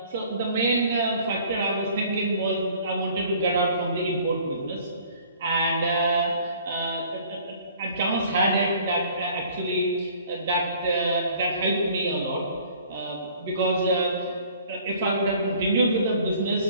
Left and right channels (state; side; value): inverted; both; correlation -0.54